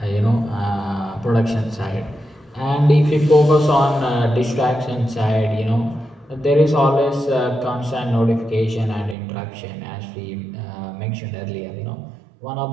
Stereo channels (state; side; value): drops out; left; at 9.2 s